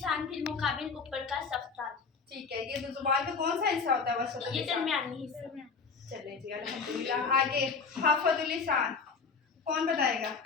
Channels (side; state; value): right; quieter; 5.1 dB